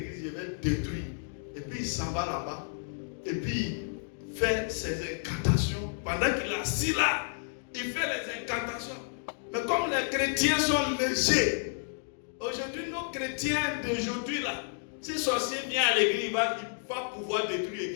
je vais détruire. Et puis il s'en va là-bas. Et puis il fait ses incantations. Pendant qu'il est assis là, il fait les incantations. Mais comme les chrétiens sont légers, aujourd'hui, nos chrétiens d'aujourd'hui là, si le sorcier vient à l'église, il va pouvoir détruire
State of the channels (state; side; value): silent; right; digital silence